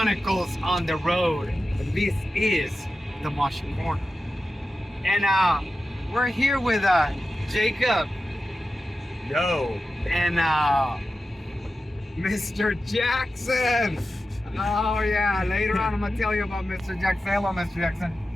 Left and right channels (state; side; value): normal; both; correlation 0.93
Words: on the Road. This is the Moshi Corner. And we're here with Jacob. Yo. And Mr. Jackson. Oh yeah, later on I'm gonna tell you about Mr. Jackson. Hello, Mr. Jackson.